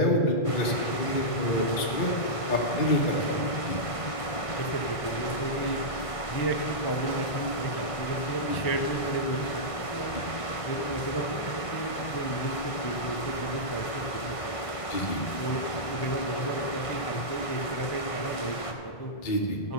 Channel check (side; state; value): right; late; 1.5 ms